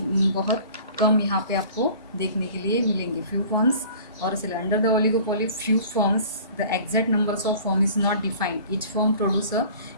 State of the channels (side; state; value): both; inverted; correlation -0.46